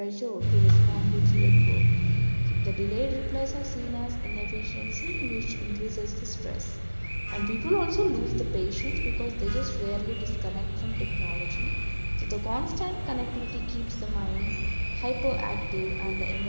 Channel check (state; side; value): inverted; both; correlation -1.00